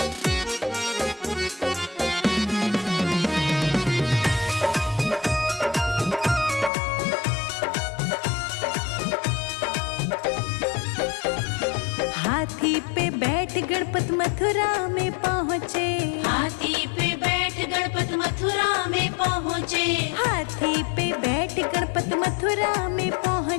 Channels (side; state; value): right; drops out; at 6.7 s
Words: हाथी पे बैठ गणपत मथुरा में पहुँचे। हाथी पे बैठ गणपत मथुरा में पहुँचे। हाथी पे बैठ गणपत मथुरा में